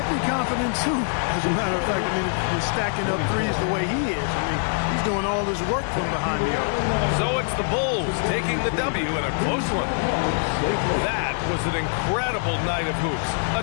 be confident too. As a matter of fact, I mean, if you're stacking up threes the way he is, I mean, he's doing all this work from behind the arc. So it's the Bulls taking the W in a close one. That was an incredible night of hoops.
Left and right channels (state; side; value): silent; right; 63 dB below the other